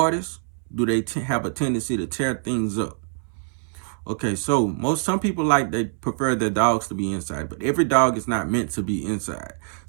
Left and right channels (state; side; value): silent; left; 62 dB below the other